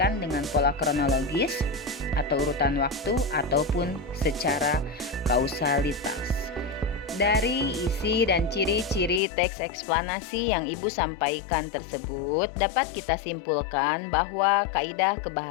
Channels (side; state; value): right; drops out; at 9.2 s